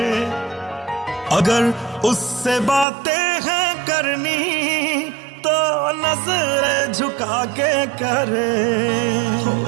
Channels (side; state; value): left; drops out; at 2.9 s